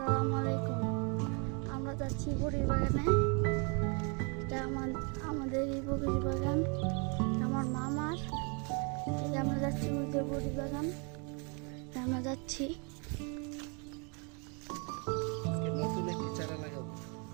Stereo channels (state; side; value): quieter; left; 35.1 dB